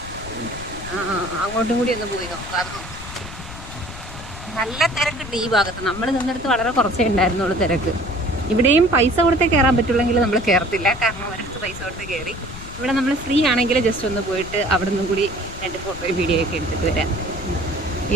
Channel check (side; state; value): left; noise; rumble, 13 dB below the sound